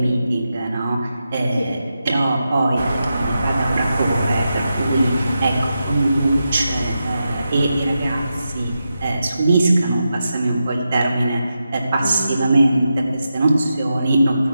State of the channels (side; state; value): both; inverted; correlation -0.88